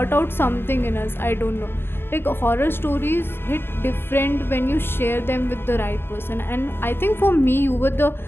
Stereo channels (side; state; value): right; late; 0.11 ms